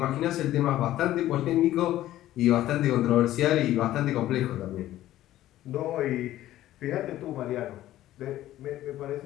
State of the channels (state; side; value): quieter; right; 14.1 dB